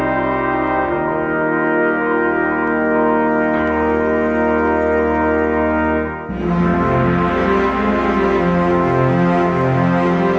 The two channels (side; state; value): both; identical; correlation 1.00